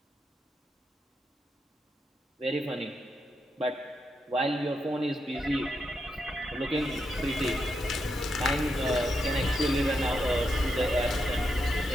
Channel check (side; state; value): both; normal; correlation 0.83